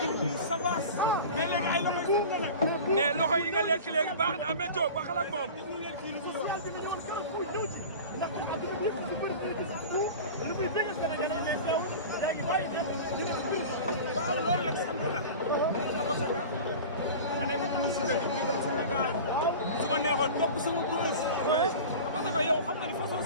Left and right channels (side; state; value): both; inverted; correlation -0.34